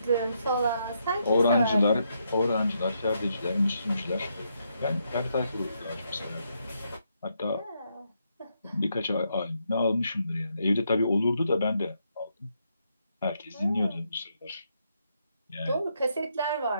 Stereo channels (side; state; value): both; inverted; correlation -0.78